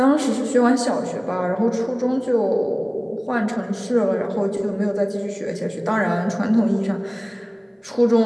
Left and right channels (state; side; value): identical; both; correlation 1.00